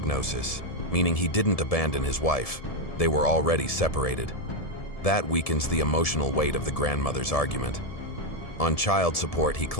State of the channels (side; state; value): right; late; 1.7 ms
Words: meaning he didn't abandon his wife. They were already separated. That weakens the emotional weight of the grandmother's argument. On child support, he